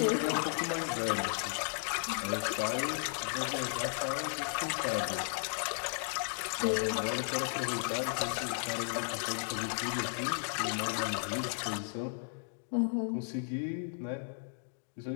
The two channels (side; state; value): right; silent; digital silence